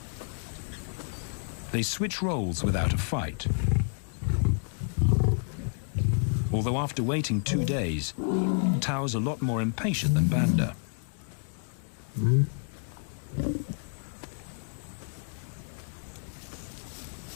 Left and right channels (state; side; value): silent; right; digital silence